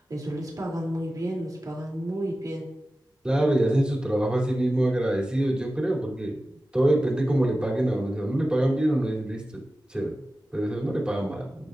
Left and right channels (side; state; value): both; normal; correlation 0.95